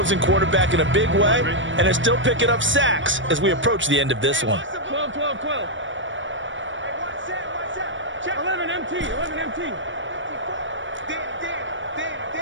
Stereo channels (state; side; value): late; left; 0.56 ms